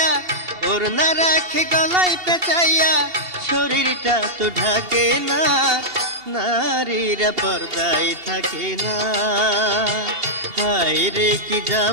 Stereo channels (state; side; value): late; left; 2.8 ms